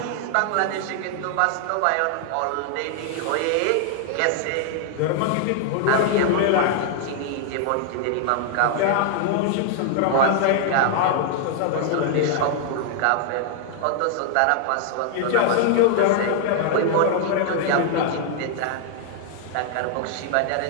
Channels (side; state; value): both; different; correlation 0.00